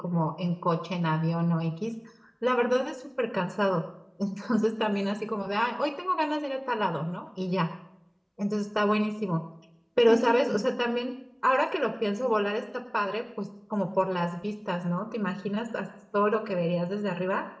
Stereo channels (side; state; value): both; identical; correlation 1.00